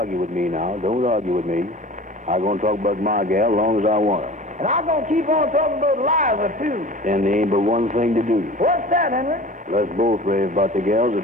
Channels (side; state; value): both; normal; correlation 0.40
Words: with me now. Don't argue with me. I'm going to talk about my gal as long as I want her. And I'm gonna keep on talking about Liza, too. And there ain't but one thing to do. What's that, Henry? Let's both rave about the gals at